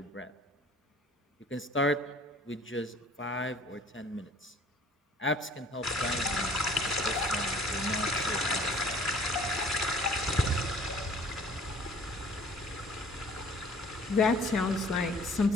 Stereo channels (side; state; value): both; normal; correlation 0.51